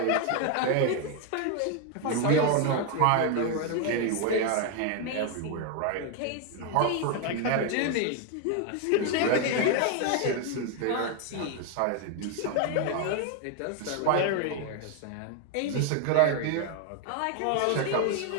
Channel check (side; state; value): both; different; correlation 0.01